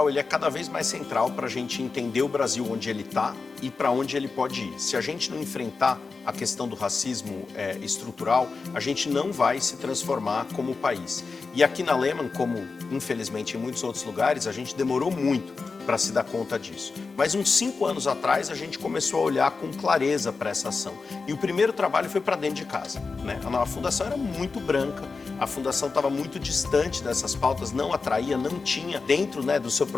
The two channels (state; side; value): quieter; right; 4.4 dB